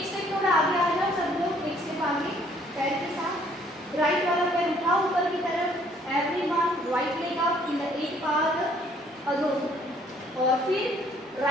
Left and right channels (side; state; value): both; normal; correlation 0.62